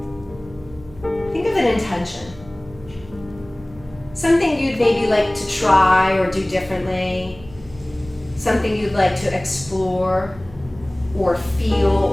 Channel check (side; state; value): right; noise; hum, 20 dB below the sound